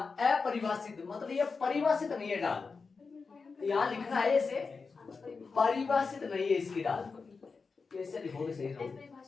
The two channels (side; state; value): right; quieter; 4.7 dB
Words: अपरिभाषित मतलब ये परिभाषित नहीं है डाल, यहां लिखना है ऐसे, परिभाषित नहीं है इसकी डाल, कैसे लिखोगे सही रहोगे,